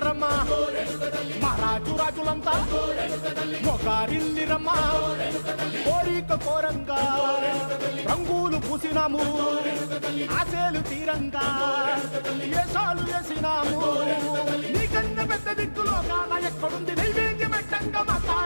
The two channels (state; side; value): inverted; both; correlation -1.00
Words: మహారాజు రాజులంతా మొగారిల్లిరమ్మా కోరిక కోరంగా రంగులు పూసినాము ఆశలు తీరంగా ఏసాలు వేసినాము నీకన్నా పెద్ద దిక్కులో కాన ఎక్కడుంది నైవేద్యం పెట్టంగా మా